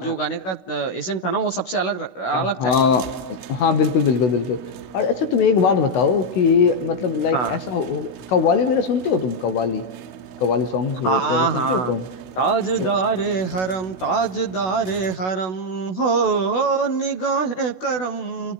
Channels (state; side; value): late; right; 16 ms